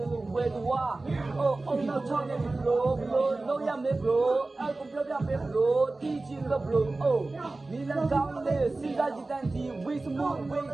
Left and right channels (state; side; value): quieter; left; 3.2 dB